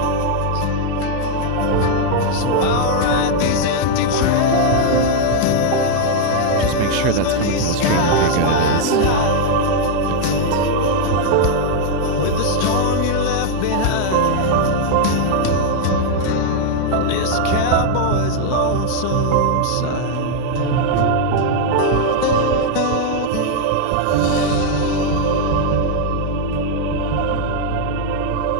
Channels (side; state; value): both; different; correlation 0.00